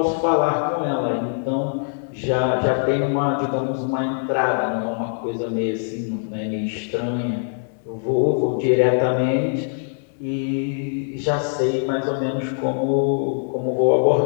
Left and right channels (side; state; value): right; silent; 64 dB below the other